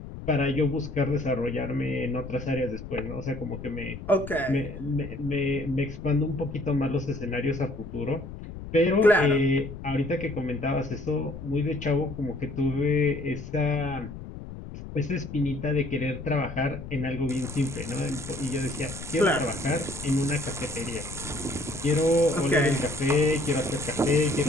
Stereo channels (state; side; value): noise; left; rumble, 11 dB below the sound